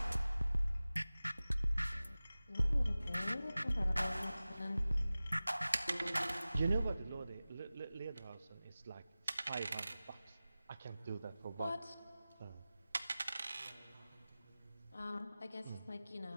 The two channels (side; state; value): both; inverted; correlation -0.97